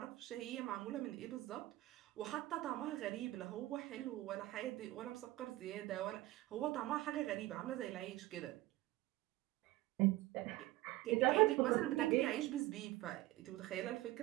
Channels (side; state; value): left; quieter; 17.5 dB